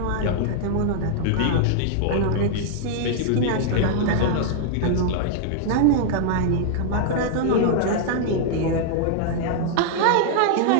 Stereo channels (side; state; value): both; different; correlation -0.01